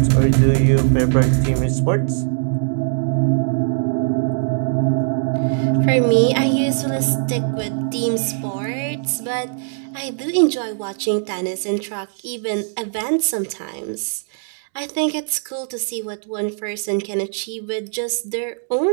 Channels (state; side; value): silent; left; digital silence